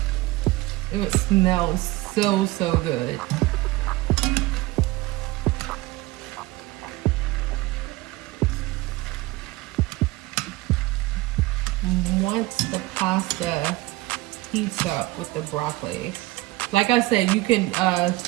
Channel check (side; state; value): left; quieter; 19.5 dB